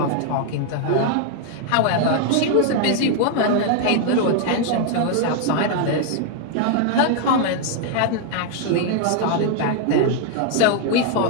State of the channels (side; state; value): both; different; correlation 0.00